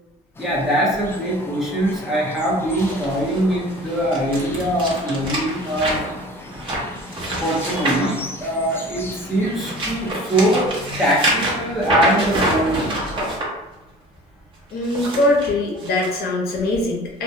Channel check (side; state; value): both; normal; correlation 0.43